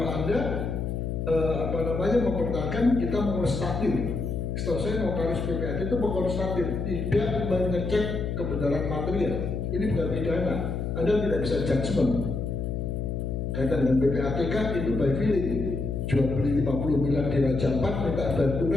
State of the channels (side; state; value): left; noise; hum, 2 dB below the sound